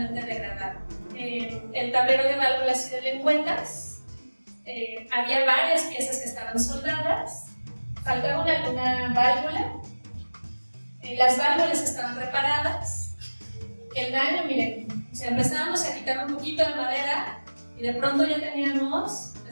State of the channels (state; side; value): inverted; both; correlation -1.00